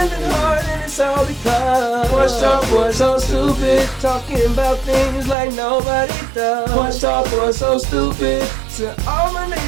hard and it's all because Porch Talk Boys so stupid, talking about things like nobody does. Porch Talk Boys so stupid, to all my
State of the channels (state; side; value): drops out; left; at 5.4 s